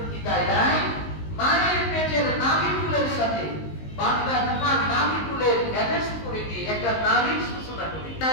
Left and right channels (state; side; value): late; right; 19 ms